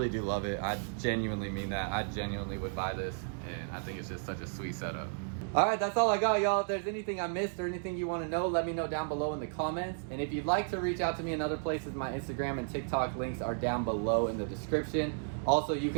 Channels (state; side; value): silent; left; digital silence